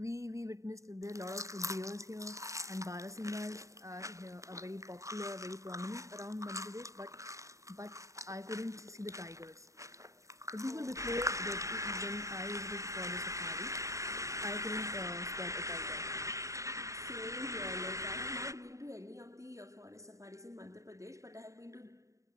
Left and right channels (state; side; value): late; left; 0.15 ms